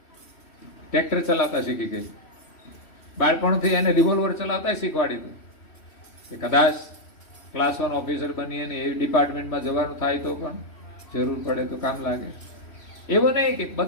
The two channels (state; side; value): late; right; 3.1 ms